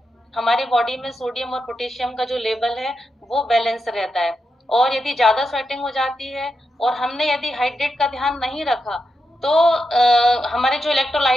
हमारी बॉडी में सोडियम और पोटेशियम का जो लेवल है वो बैलेंस रहता है। और यदि ज्यादा स्वेटिंग हो जाती है और हमने यदि हाइड्रेट का ध्यान नहीं रखा तो हमारे जो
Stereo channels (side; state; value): both; normal; correlation 0.86